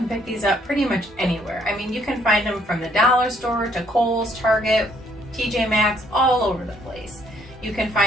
pick these up pretty much anywhere. I mean, you can find them from the dollar store to Kohl's, Target, TJ Maxx, all over the place. You can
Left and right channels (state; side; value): normal; both; correlation 0.67